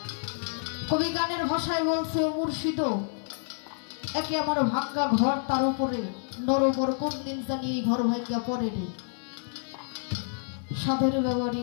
কবি গানের ভাষায় বলছে, ও মুর্শিদ একে আমার ভাঙ্গা ঘর, তার উপরে নরবর কোন দিন জানি এই ঘর ভাঙ্গা পড়ে রে। সাধের ব্যবহারী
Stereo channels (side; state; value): right; silent; 59 dB below the other